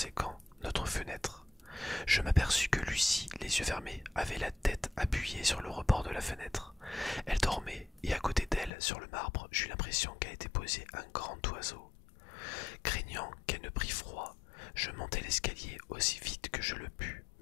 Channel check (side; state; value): right; drops out; at 8.7 s